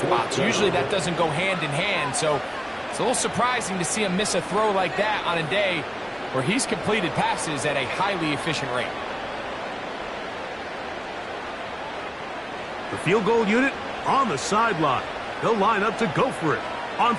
Usually that doesn't go hand in hand, so it's a little surprising to see him miss a throw like that on a day where he's completed passes at a highly efficient rate. The field goal unit on the sideline. They'll line up to go for it on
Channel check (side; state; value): both; identical; correlation 1.00